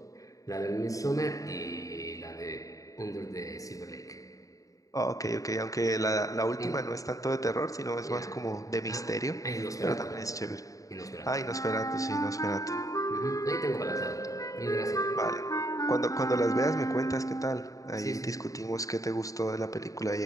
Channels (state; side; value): late; right; 0.16 ms